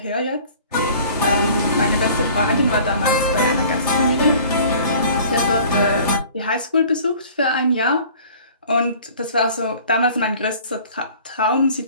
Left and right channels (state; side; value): inverted; both; correlation -0.48